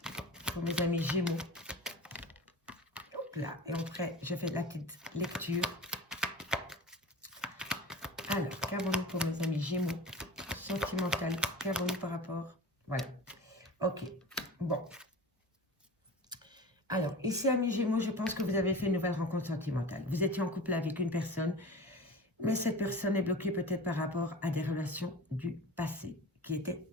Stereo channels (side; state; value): both; normal; correlation 0.35